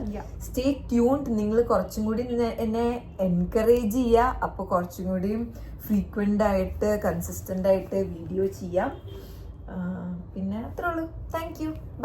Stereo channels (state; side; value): identical; both; correlation 1.00